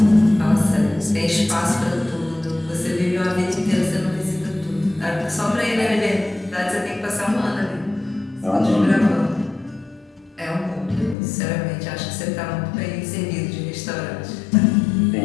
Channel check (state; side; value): drops out; right; at 11.2 s